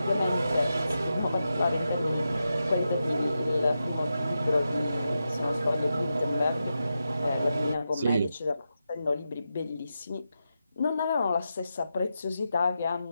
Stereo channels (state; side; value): inverted; both; correlation -0.88